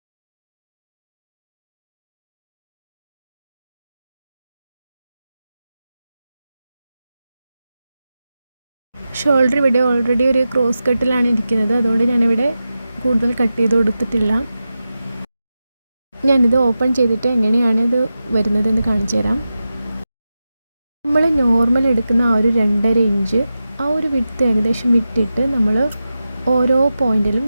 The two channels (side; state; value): both; inverted; correlation -0.92